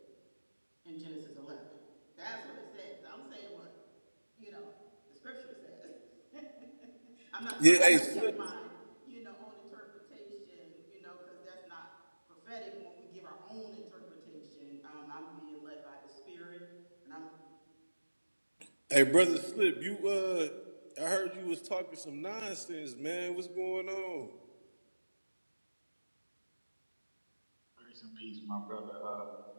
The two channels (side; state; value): both; inverted; correlation -1.00